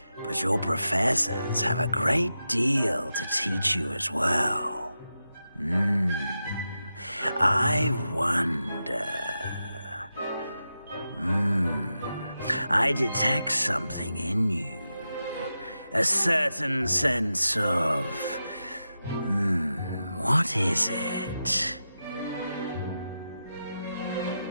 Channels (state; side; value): inverted; both; correlation -0.90